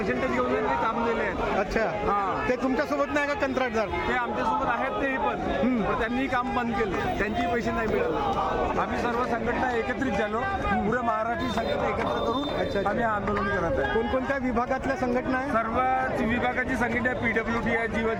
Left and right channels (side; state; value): both; identical; correlation 1.00